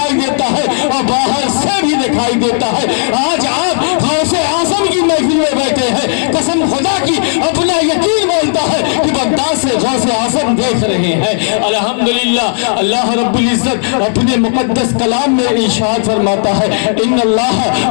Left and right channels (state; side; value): silent; right; digital silence